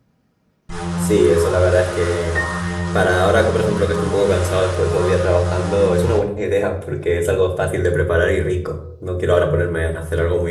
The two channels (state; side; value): identical; both; correlation 1.00